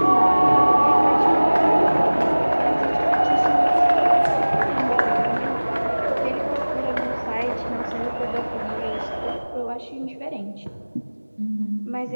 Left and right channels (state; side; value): inverted; both; correlation -1.00